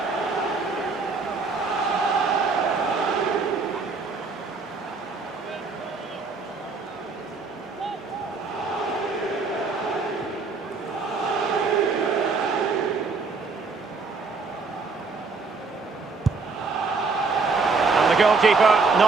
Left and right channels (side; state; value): left; quieter; 4.3 dB